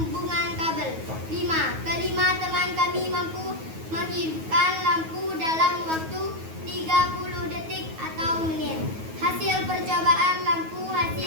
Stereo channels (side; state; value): left; late; 9.3 ms